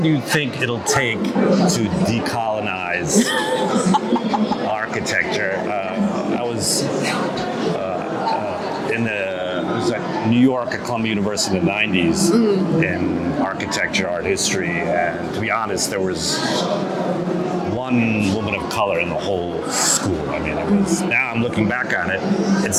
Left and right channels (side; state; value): both; identical; correlation 1.00